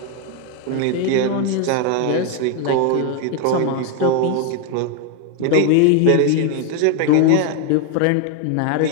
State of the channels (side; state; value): both; different; correlation 0.01